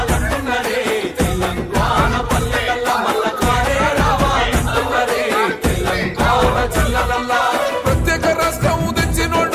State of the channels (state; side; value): identical; both; correlation 1.00